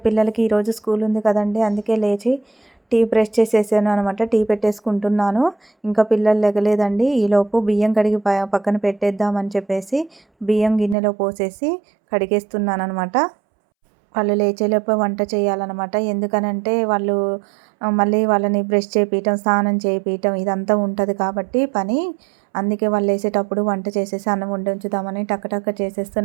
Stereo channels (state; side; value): drops out; left; at 11.0 s